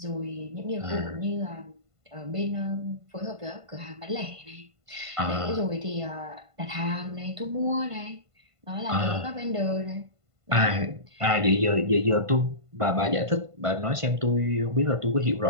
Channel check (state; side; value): late; left; 1.5 ms